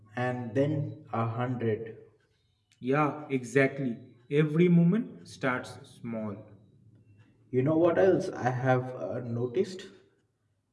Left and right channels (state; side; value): identical; both; correlation 1.00